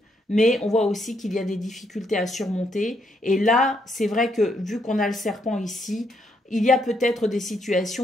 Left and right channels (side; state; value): both; normal; correlation 0.75